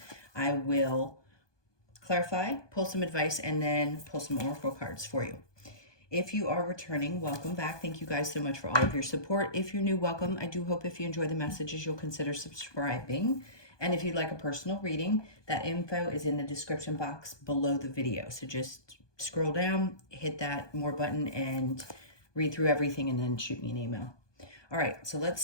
I will clarify, pull some advice, and then pull some oracle cards for you. If you are returning, welcome back. Thank you guys so much for all of your support. If you're new, welcome. I do hope if you enjoy the messages, you'll consider subscribing. And if you'd like a personal reading, that info is in the description box below the video. So just scroll down, hit that more button, and read through everything, and then shoot me an email. All right, so let's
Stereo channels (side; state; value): right; late; 1.2 ms